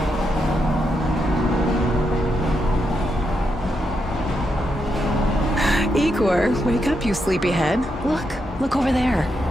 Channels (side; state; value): both; normal; correlation 0.82